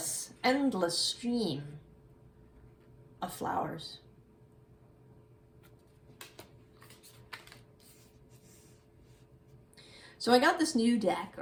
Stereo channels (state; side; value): identical; both; correlation 1.00